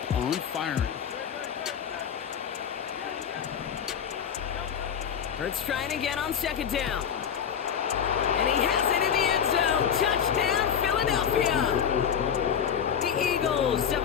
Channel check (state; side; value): quieter; right; 8.0 dB